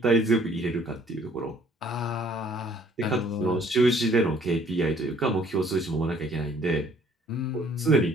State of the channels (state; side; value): normal; both; correlation 0.60